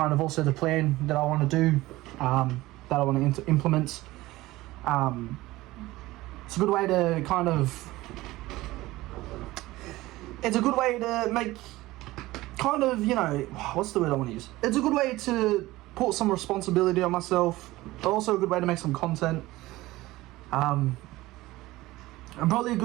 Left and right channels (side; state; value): left; quieter; 18.3 dB